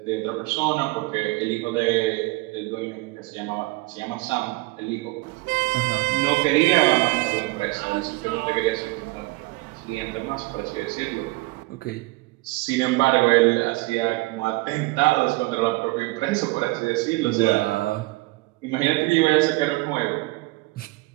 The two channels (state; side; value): quieter; left; 22.8 dB